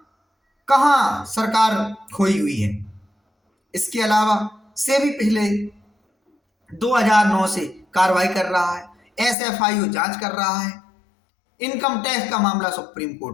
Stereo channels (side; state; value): right; drops out; at 9.3 s